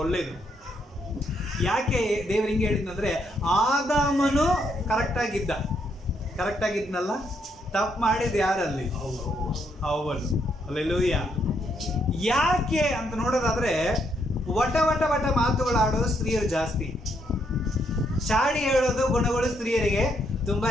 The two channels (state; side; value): normal; both; correlation 0.75